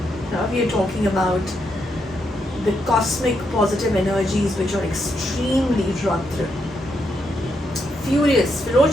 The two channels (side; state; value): both; normal; correlation 0.80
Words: Here we are talking about the cosmic positive energies which are extremely drawn through. Furious,